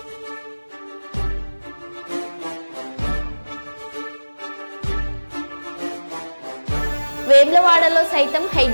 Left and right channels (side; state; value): both; inverted; correlation -1.00